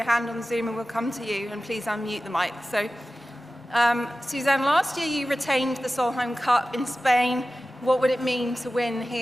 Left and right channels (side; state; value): both; normal; correlation 0.95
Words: hand on Zoom and we'll come to you, and please unmute the mic. So, Suzann, last year you retained the Solheim Cup in Spain. What would it mean to win